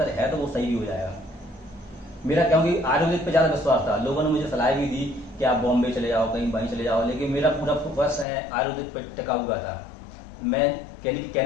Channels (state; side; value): drops out; right; at 8.2 s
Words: है तो वो सही भी हो जाएगा मेरा, क्योंकि आयुर्वेदिक पे ज्यादा विश्वास था। लोगों ने मुझे सलाह भी दी कि आप बॉम्बे चले जाओ, कहीं वहीं चले जाओ, लेकिन मेरा पूरा फोकस है आयुर्वेदिक पर टिका हुआ था। मैं